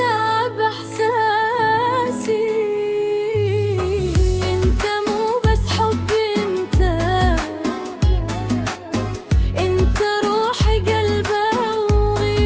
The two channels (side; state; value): both; identical; correlation 1.00